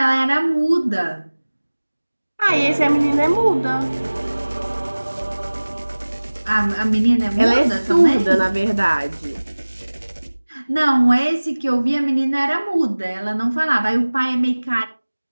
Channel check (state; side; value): inverted; both; correlation -1.00